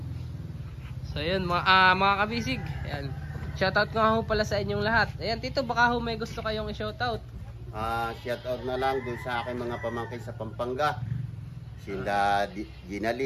So yun mga kabisig. Ayan. Shoutout nga ho pala sa inyong lahat. Ayan Tito, baka ho may gusto kayong i-shoutout. Shoutout na lang dun sa aking mga pamangkin sa Pampanga. Sila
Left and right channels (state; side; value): identical; both; correlation 1.00